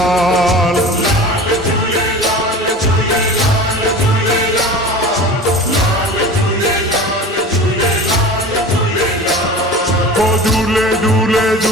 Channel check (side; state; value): both; normal; correlation 0.36